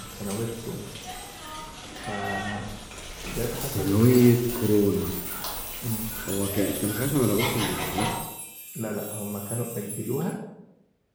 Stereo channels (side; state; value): both; identical; correlation 1.00